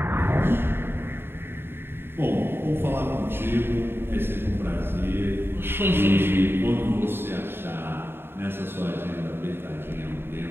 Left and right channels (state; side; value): late; left; 0.11 ms